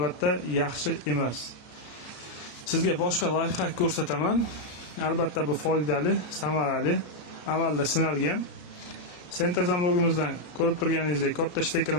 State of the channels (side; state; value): right; late; 33 ms